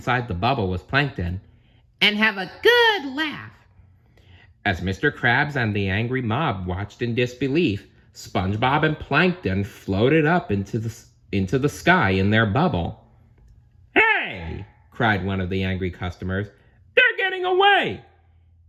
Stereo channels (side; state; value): both; identical; correlation 1.00